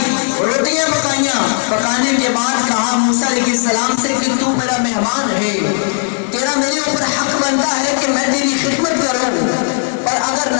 روٹیاں پکائیاں، پکانے کے بعد کہا موسیٰ علیہ السلام سے کہ تو میرا مہمان ہے، تیرا میرے اوپر حق بنتا ہے کہ میں تیری خدمت کروں، اور اگر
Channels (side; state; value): right; silent; 58 dB below the other